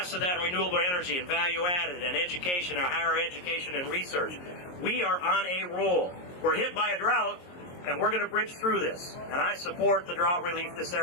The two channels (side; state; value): right; late; 22 ms